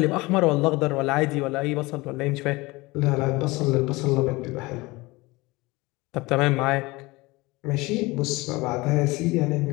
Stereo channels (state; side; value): quieter; right; 22.2 dB